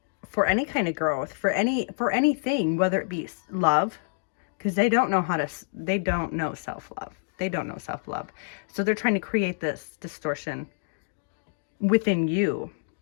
any kind of growth, for anything, whether it be love, because they don't know self-love. They don't know self-love. So they're trying to create this distortion within you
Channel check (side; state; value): right; silent; digital silence